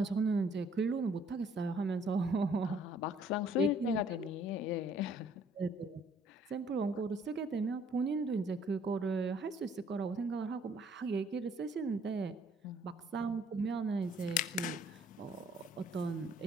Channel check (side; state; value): both; normal; correlation 0.61